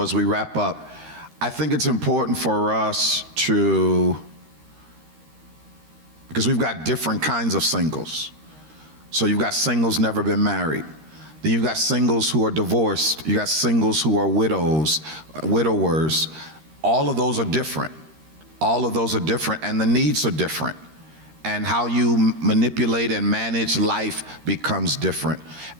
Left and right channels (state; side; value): late; left; 13 ms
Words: as we wrap up, I think it's important for us because we've got different kinds of singles. So you've got singles never been married. Then you've got singles who are divorced. You got singles who are widowers. All of those are different. All of those are different, and the needs are different. And how you manipulate and manage life becomes different.